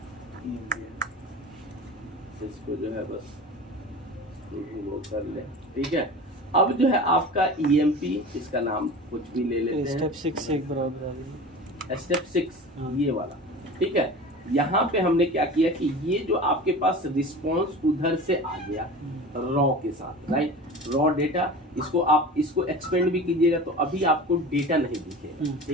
इसको जो है बस वो कर ले, ठीक है। अब जो है आपका ईएमपी, इसका नाम कुछ भी ले लेते हैं, स्टेप 6 से एक बराबर, स्टेप 6 ये वाला, ठीक है। यहाँ पे हमने क्या किया कि ये जो आपके पास रिस्पॉन्स उधर से आ गया रॉ के साथ, राइट, रॉ डेटा, इसको आप इसको एक्सपेंड भी कीजिएगा तो अभी आपको डेटा नहीं दिखेगा,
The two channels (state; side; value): normal; both; correlation 0.35